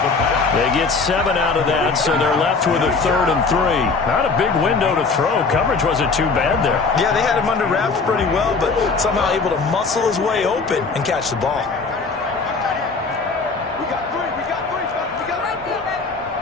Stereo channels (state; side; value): quieter; right; 4.4 dB